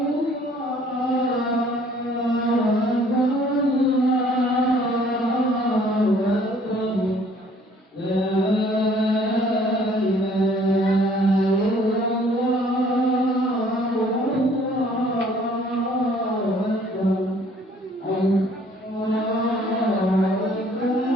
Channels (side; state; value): both; normal; correlation 0.58